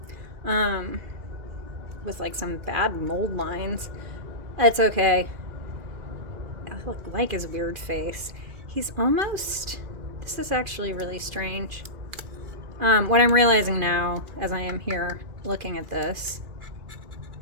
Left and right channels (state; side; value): late; left; 2.4 ms